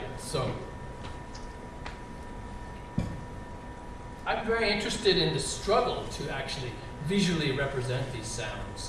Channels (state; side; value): identical; both; correlation 1.00